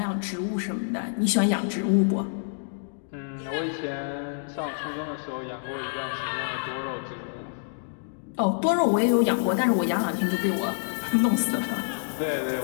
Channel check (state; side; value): silent; right; digital silence